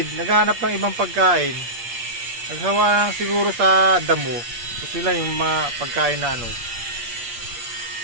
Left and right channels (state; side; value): late; left; 8.5 ms